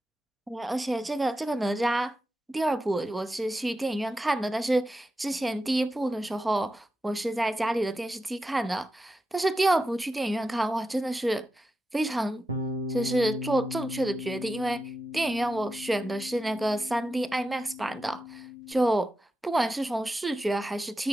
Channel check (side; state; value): both; normal; correlation 0.90